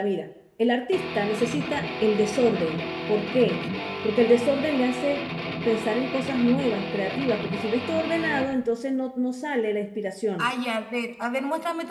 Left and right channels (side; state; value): both; identical; correlation 1.00